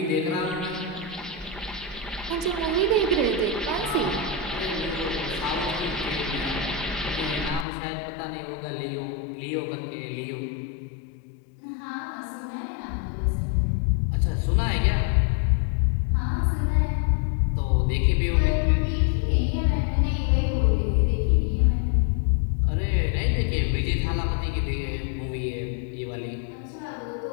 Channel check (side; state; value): right; drops out; at 7.7 s